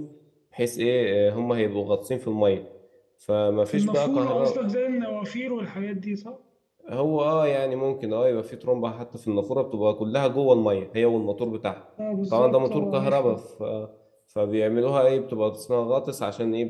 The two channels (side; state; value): both; identical; correlation 1.00